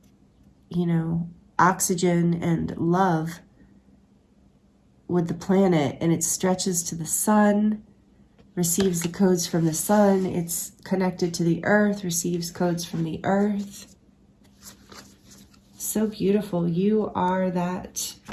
you know, oxygen and love with the planet, and it stretches to the sun, receives the codes from the sun, it's connected to the earth, receives codes from the earth. So beautiful. You are that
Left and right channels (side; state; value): both; identical; correlation 1.00